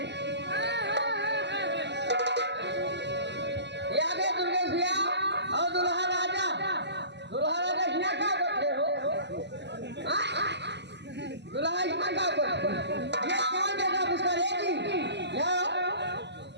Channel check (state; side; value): late; left; 0.50 ms